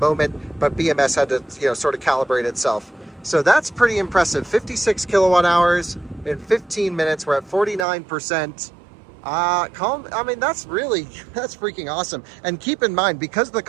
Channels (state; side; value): drops out; left; at 7.9 s